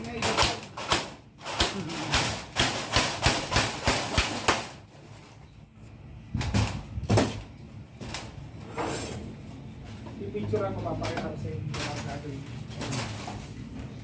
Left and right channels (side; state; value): both; identical; correlation 1.00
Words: na ilapag. I-picture ako, papakita ko sa inyo ang gagawin.